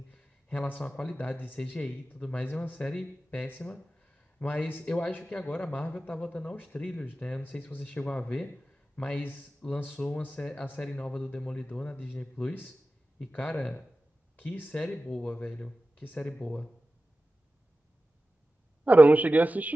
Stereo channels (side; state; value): both; normal; correlation 0.95